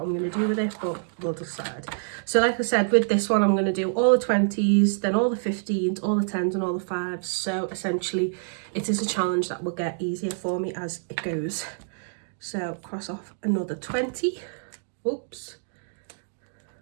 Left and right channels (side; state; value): left; silent; digital silence